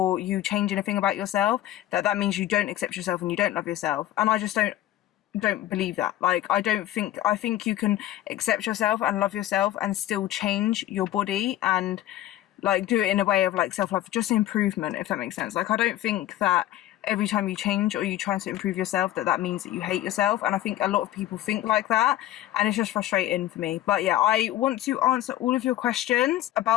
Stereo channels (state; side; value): quieter; right; 13.8 dB